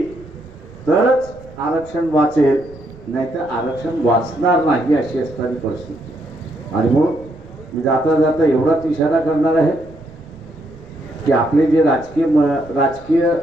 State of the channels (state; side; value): noise; right; rumble, 22 dB below the sound